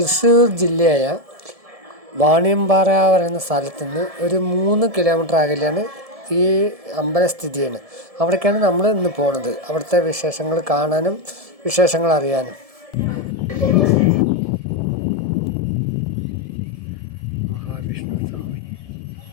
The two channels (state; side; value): late; left; 1.7 ms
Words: ജില്ലയായ വാണിയമ്പാറ പറയുന്ന സ്ഥലത്ത് നിന്ന് ഒരു 3 കിലോമീറ്റർ അകലെയാണ് ഈ അമ്പലം സ്ഥിതി ചെയ്യുന്നത്. അവിടേക്കാണ് നമ്മൾ ഇന്ന് പോണത്, അവിടുത്തെ വിശേഷങ്ങൾ കാണാനും വിശേഷങ്ങൾ അറിയാനും. മഹാവിഷ്ണു സ്വാമി,